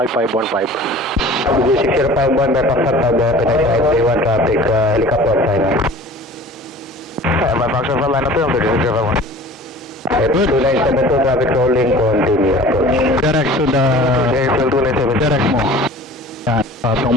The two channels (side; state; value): both; normal; correlation 0.44